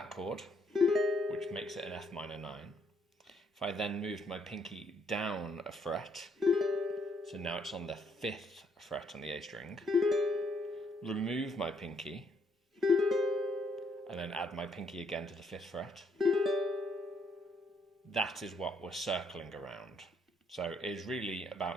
chord, which makes it an F minor 9. If I then moved my pinky down a fret, so now it's on the 5th fret on the A string, remove my pinky, and then add my pinky again to the 5th fret. That is what we're circling around. So it's really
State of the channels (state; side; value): normal; both; correlation 0.71